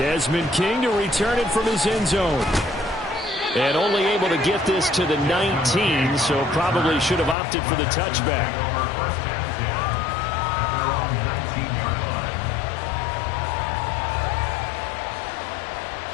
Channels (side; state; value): right; drops out; at 7.4 s